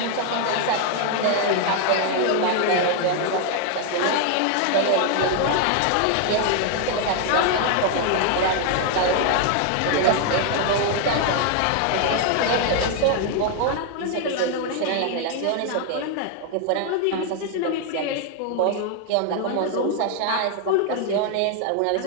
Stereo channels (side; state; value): both; different; correlation 0.00